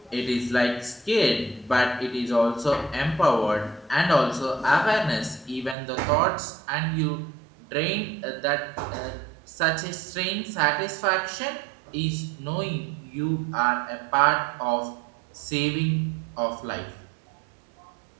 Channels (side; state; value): left; drops out; at 5.8 s